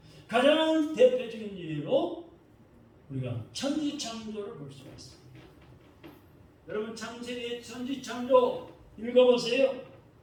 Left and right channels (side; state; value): both; identical; correlation 1.00